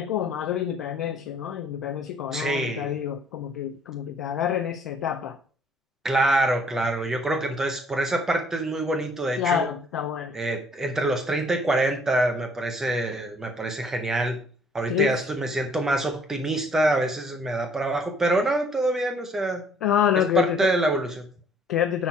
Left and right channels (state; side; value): normal; both; correlation 0.60